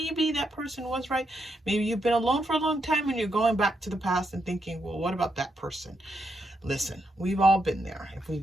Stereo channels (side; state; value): both; normal; correlation 0.81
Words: that person was right. Maybe you've been alone for a long time and you're going back to the past and thinking, well, what about that person? Listen, we've all been there. If